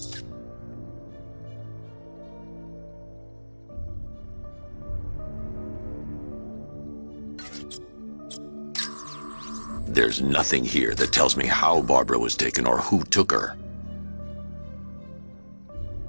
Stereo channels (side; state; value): both; inverted; correlation -1.00